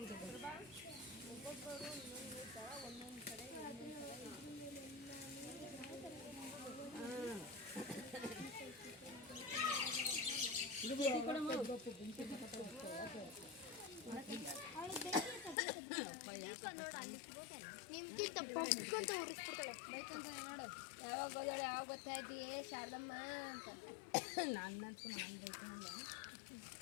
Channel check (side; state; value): right; drops out; at 15.6 s